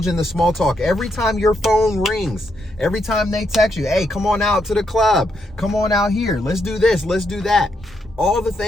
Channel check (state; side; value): normal; both; correlation 0.79